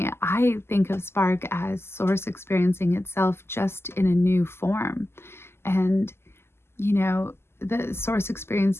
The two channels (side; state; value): right; late; 0.12 ms